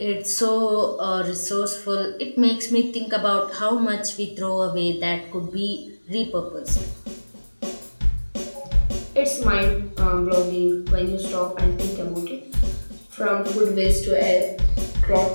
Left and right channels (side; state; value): both; inverted; correlation -1.00